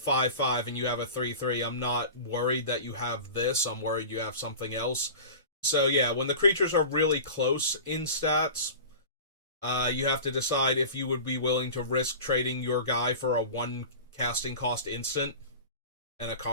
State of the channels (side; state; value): both; inverted; correlation -0.35